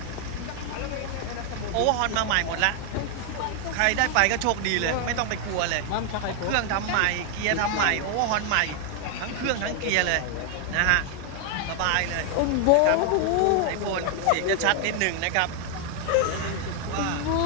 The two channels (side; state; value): both; different; correlation 0.00